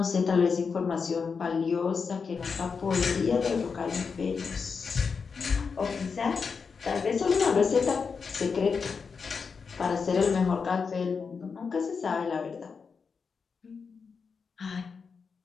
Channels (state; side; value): quieter; right; 5.5 dB